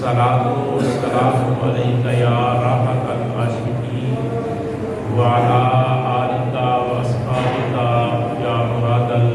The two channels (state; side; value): identical; both; correlation 1.00